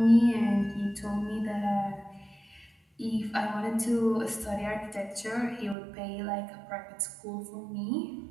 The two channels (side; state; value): left; drops out; at 5.8 s